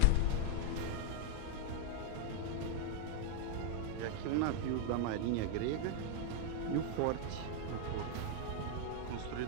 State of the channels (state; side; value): different; both; correlation 0.00